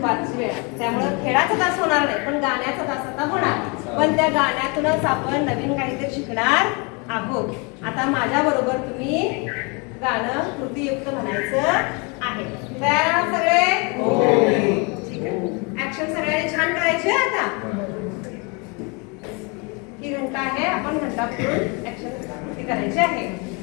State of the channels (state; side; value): quieter; right; 31.4 dB